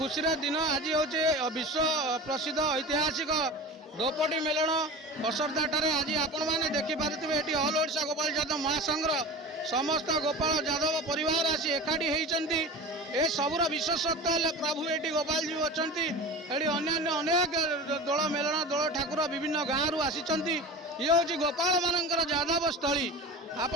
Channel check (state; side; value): normal; both; correlation 0.33